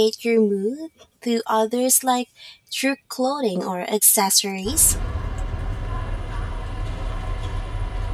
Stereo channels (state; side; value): identical; both; correlation 1.00